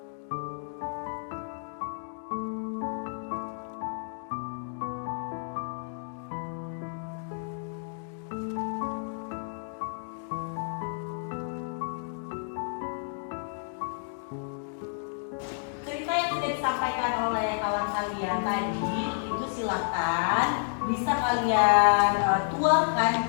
Cerita yang sudah disampaikan oleh kawan kalian tadi itu silakan bisa kalian tuangkan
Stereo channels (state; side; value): silent; right; digital silence